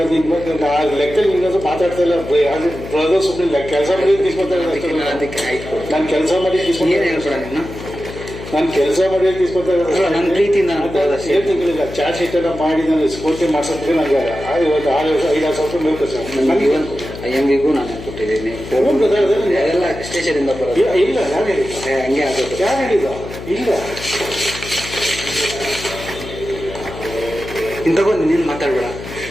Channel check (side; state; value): left; noise; hum, 12 dB below the sound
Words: ಲೆಕ್ಕದಲ್ಲಿ ನಿನ್ನದು ಮಾತಾಡ್ತಾ ಇಲ್ಲ ಬ್ರದರ್ ಸುಮ್ಮನೆ ಕೆಲಸ ಮಾಡಿ తీసుకొస్తారు ಅದಕ್ಕೆ ಆಯ್ತು ನಾನು ಕೆಲಸ ಮಾಡಿ ಏನು ಹೇಳ್ಬೇಡ ನೀನು ನಾನು ಕೆಲಸ ಮಾಡಿ తీసుకొస్తారు ನನ್ನ ಪ್ರೀತಿಯಿಂದ ಏನು ತಿಂಗಳಿಲ್ಲ ಚಾರ್ಜ್ ಶೀಟ್ ಎಲ್ಲ ಮಾಡಿ ನಾನು ಸ್ಫೂರ್ತಿ ಮಾಡ್ಸೋದಕ್ಕೆ ನನಗೆ ಇವತ್ತು 5-6 ಸಾವಿರ ರೂಪಾಯಿ ಬೇಕು ಸರ್ ನನಗೆ IMVಗೂ ನಾನು ಕೊಟ್ಟಿದ್ದೀನಿ ಎಲ್ಲ ಸ್ಟೇಷನಿಂದ ಬರೋದು ಇಲ್ಲ ಯಾರು ಹೇಳಿಲ್ಲ ಹಂಗೆ ಆಗೋದು ಯಾರು ಹೇಳಿಲ್ಲ ಇಲ್ಲ ಇನ್ನು ತಗೊಂಡು ನೀನು ಮಾತಾಡ್ಬೇಡ